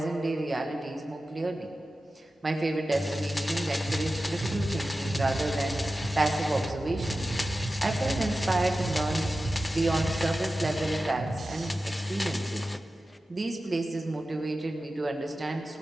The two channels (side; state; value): both; normal; correlation 0.94